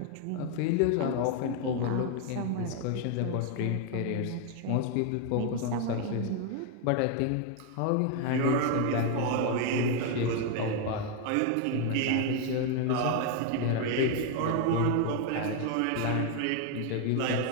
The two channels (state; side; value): different; both; correlation 0.01